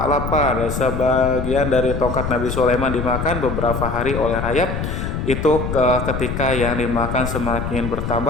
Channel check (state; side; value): noise; left; rumble, 4 dB below the sound